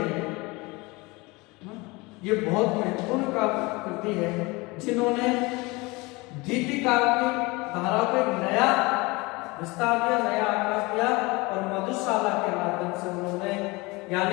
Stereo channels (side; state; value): right; quieter; 24.3 dB